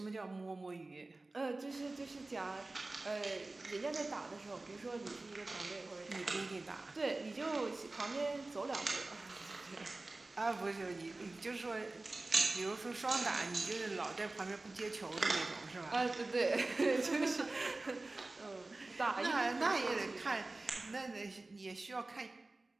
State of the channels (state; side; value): quieter; left; 3.1 dB